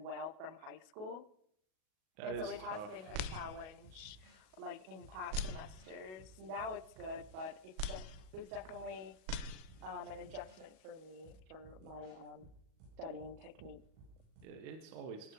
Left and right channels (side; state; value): left; late; 37 ms